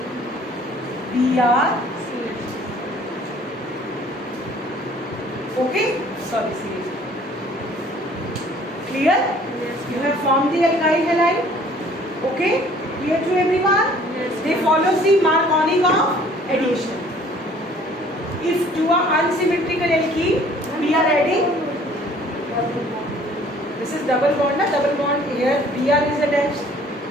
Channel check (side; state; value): both; normal; correlation 0.55